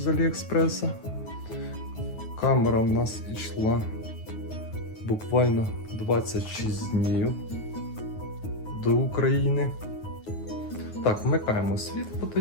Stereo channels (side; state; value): right; late; 9.4 ms